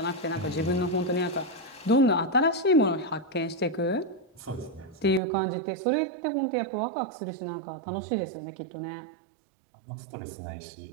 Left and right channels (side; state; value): left; drops out; at 5.2 s